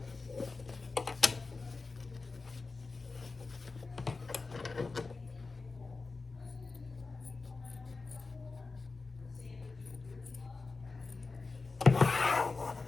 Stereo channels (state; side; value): quieter; right; 4.0 dB